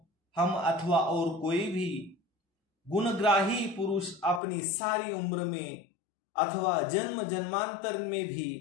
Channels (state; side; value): drops out; right; at 4.4 s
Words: हम अथवा और कोई भी गुणग्राही पुरुष अपनी सारी उम्र में अथवा जन्म जन्मांतर में भी